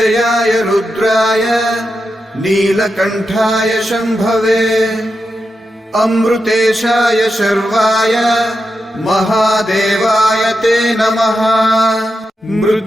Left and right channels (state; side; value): normal; both; correlation 0.88